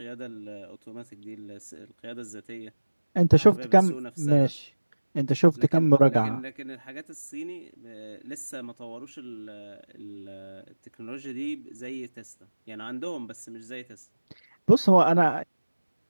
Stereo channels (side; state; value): both; inverted; correlation -1.00